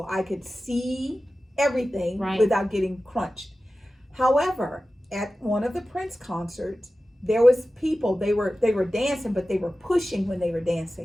I could see everything without getting crunched. However, at one of the Prince concerts, there was people, they were dancing, but they were pushing when they were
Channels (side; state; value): both; normal; correlation 0.95